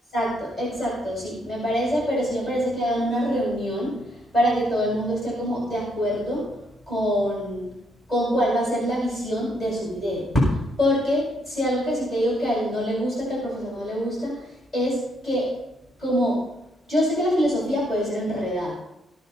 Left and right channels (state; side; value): normal; both; correlation 0.73